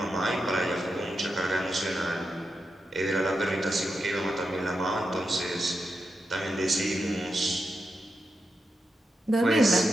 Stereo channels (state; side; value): normal; both; correlation 0.87